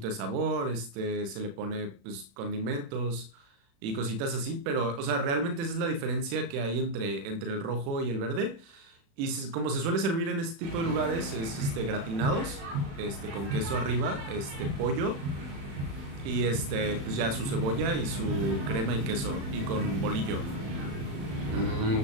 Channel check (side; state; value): left; late; 36 ms